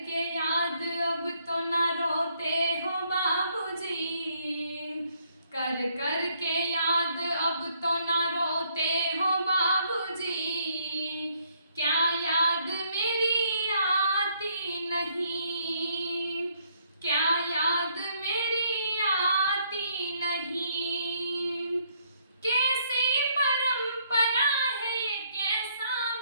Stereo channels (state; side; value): inverted; both; correlation -0.68